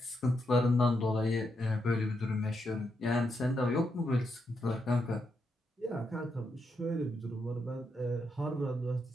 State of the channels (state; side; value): normal; both; correlation 0.82